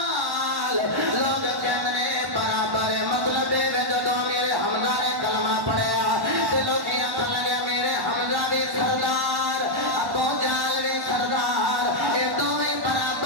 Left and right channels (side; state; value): left; late; 1.1 ms